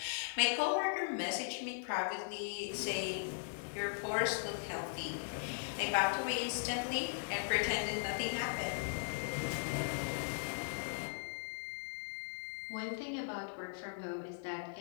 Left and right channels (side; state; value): right; silent; 52 dB below the other